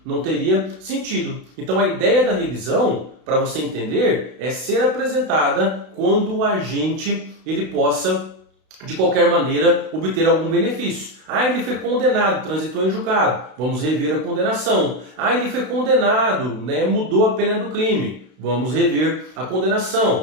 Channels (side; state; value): left; late; 32 ms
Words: Não teria sentido. Então a ideia da revisão, para você entender, é ser apresentada quando o agente ele possa, de qualquer maneira, obter algum benefício. Ah, ele foi condenado, transitou em julgado. Vamos rever a condenação. Ah, ele foi condenado, né, mudou a pena do crime. Vamos rever a